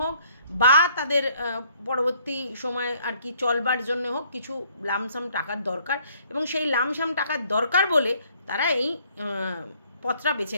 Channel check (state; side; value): inverted; both; correlation -0.63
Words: হোক বা তাদের পরবর্তী সময় আর কি চলবার জন্য হোক, কিছু লামসাম টাকার দরকার। এবং সেই লামসাম টাকার দরকার বলে তারা এই পথটা বেছে